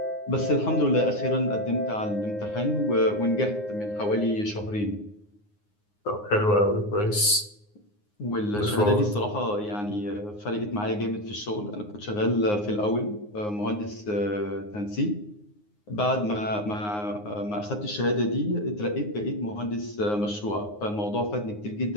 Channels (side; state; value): right; late; 9.6 ms